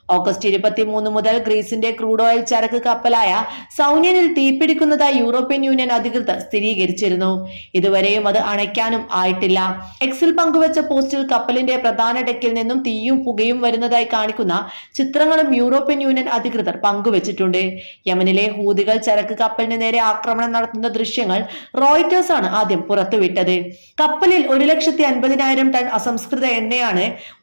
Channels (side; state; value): both; inverted; correlation -1.00